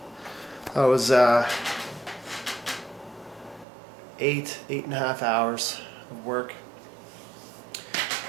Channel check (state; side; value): drops out; left; at 3.7 s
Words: That was 8.5 hours of work,